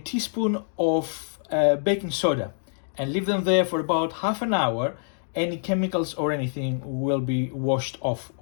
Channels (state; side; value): silent; right; digital silence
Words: of baking soda, and leave them there for about half an hour. Any chemicals or anything will be washed off,